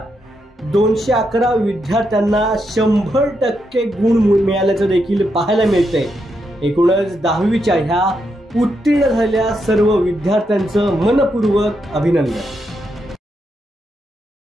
211 विद्यार्थ्यांना 100% गुण मिळाल्याचं देखील पाहायला मिळतंय। एकूणच 10वीच्या ह्या उत्तीर्ण झालेल्या सर्व विद्यार्थ्यांचं मनपूर्वक अभिनंदन।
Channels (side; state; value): both; normal; correlation 0.82